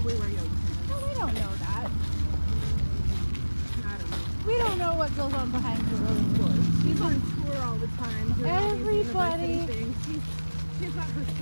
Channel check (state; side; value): inverted; both; correlation -1.00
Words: wear yoga pants. No, we don't know that. I don't know. We don't know what goes on behind closed doors. She's on tour all the time doing all these university things. She's got her